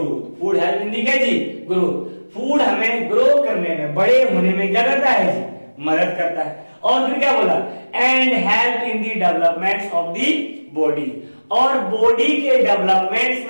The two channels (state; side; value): inverted; both; correlation -1.00